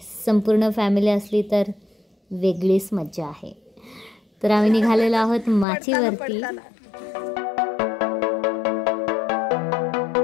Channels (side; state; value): right; drops out; at 5.7 s